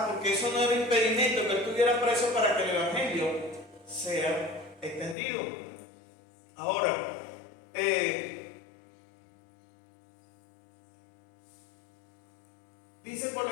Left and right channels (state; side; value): drops out; right; at 5.2 s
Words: porque eso no era impedimento que él estuviera preso para que el Evangelio sea extendido. Ahora, Dice por la